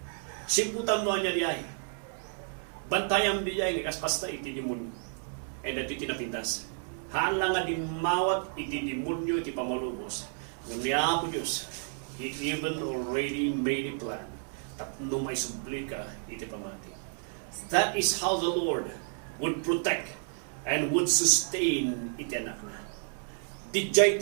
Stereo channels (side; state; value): left; silent; 57 dB below the other